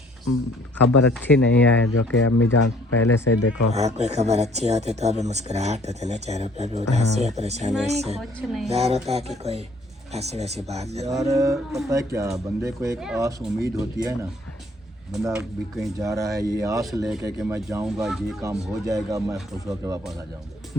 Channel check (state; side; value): normal; both; correlation 0.59